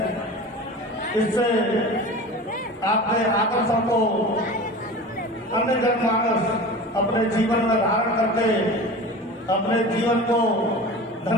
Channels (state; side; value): normal; both; correlation 0.34